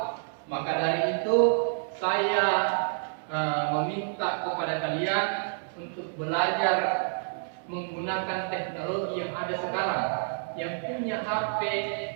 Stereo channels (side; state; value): left; silent; 59 dB below the other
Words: Maka dari itu saya meminta kepada kalian untuk belajar menggunakan teknologi yang ada sekarang. Yang punya HP